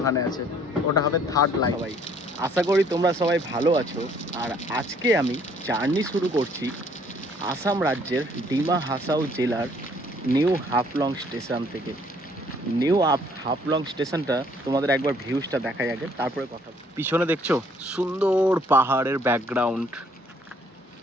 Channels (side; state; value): both; normal; correlation 0.62